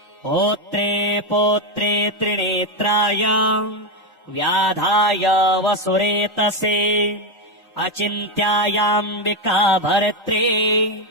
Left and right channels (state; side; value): normal; both; correlation 0.08